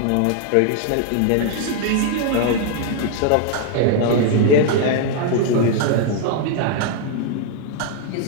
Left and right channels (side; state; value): both; different; correlation 0.00